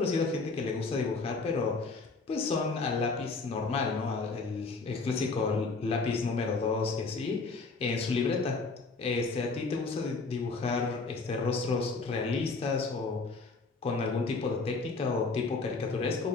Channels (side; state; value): right; quieter; 4.0 dB